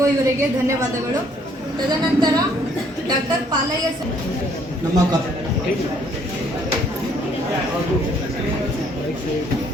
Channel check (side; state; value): both; normal; correlation 0.64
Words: ಇವರಿಗೆ ಧನ್ಯವಾದಗಳು. ತದನಂತರ ಡಾಕ್ಟರ್ ಪಾಲಯ್ಯ ಸರ್ ನಮ್ಮ